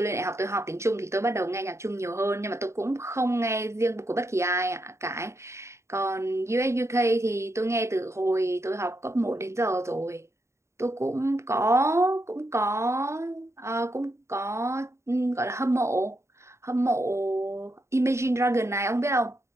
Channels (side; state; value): left; late; 0.14 ms